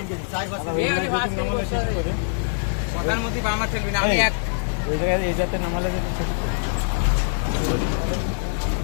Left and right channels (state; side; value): silent; right; digital silence